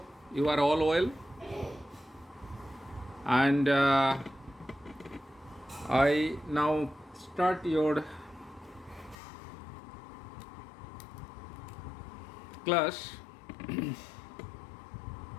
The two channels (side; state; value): right; drops out; at 9.2 s